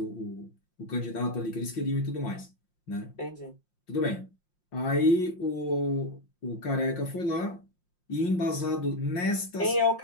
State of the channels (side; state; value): right; late; 5.6 ms